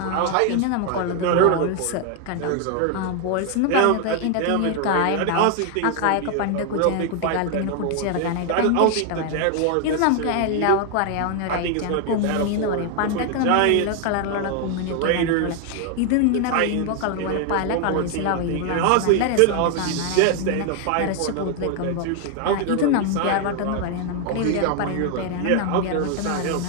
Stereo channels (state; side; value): different; both; correlation 0.00